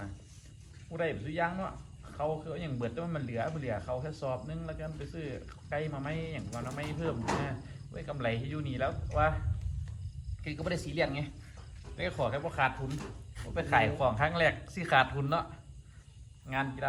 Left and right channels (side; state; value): both; identical; correlation 1.00